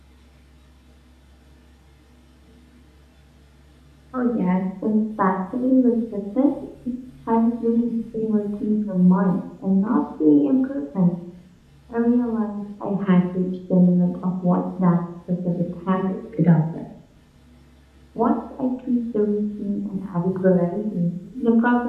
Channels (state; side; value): identical; both; correlation 1.00